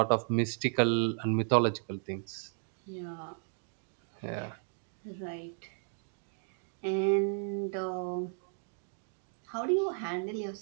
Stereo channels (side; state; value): left; silent; 55 dB below the other